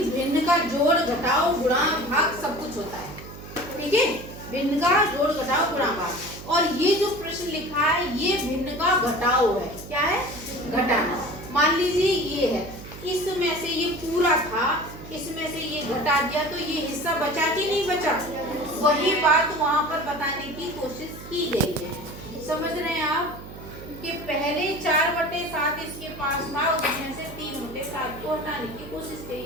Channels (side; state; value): right; noise; hum, 14 dB below the sound